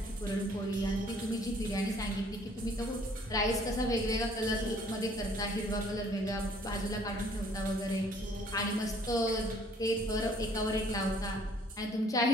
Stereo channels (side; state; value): both; normal; correlation 0.59